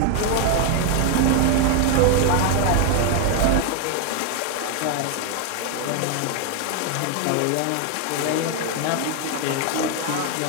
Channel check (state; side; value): different; both; correlation 0.01